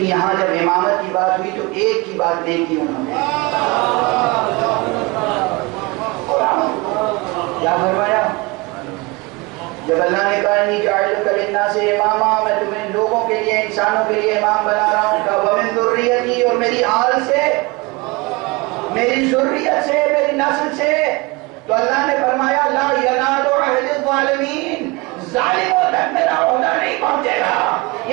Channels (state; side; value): quieter; left; 25.5 dB